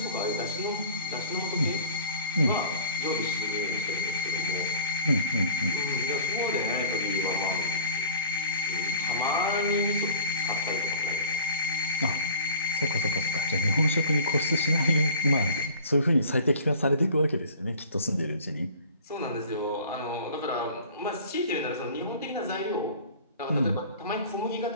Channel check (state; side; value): inverted; both; correlation -0.46